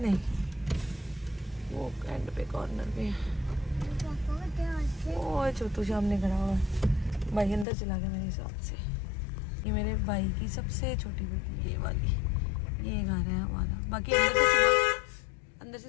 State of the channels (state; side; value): drops out; right; at 7.7 s